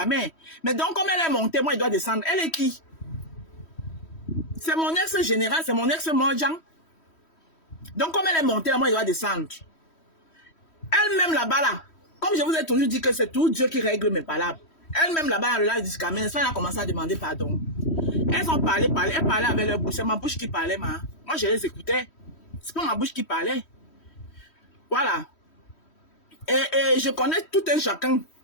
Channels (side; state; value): right; late; 3.1 ms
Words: Mais donc, comme elle est montée, moi, je dois descendre. Elle est qui? C'est mon ex-général, c'est mon ex-Morjan. Donc, comme elle est montée, là, moi, je dois descendre. Elle-même là-bas, là, comme je vous ai toujours dit que c'est tout Dieu qui règle mes palabres. Elle-même là-bas, dans le live de Ducamé, elle a commencé à demander pardon. Elles ont parlé, elles parlaient avec leur bouche. C'est ma bouche qui parlait, moi je les écoutais. C'est pas ma bouche qui parlait. Voilà. Et je connais tout un chacun.